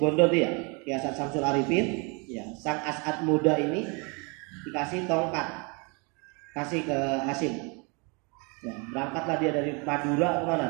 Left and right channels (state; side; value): quieter; left; 31.9 dB